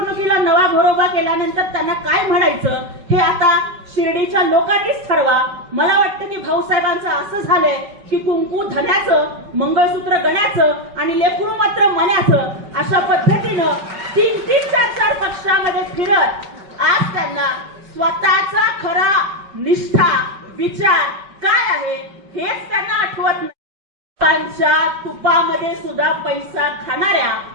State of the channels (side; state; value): left; late; 5.3 ms